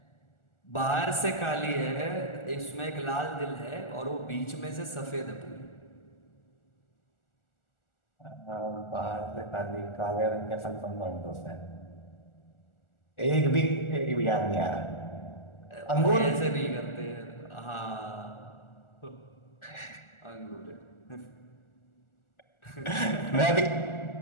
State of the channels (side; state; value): right; late; 1.4 ms